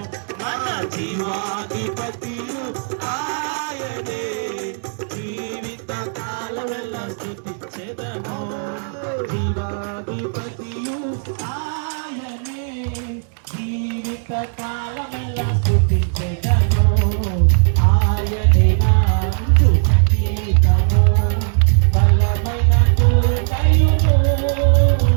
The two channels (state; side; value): silent; left; digital silence